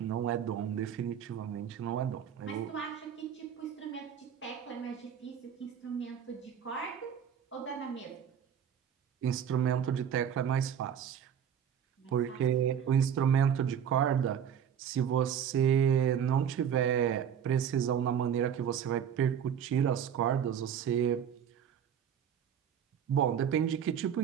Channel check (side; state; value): left; quieter; 8.5 dB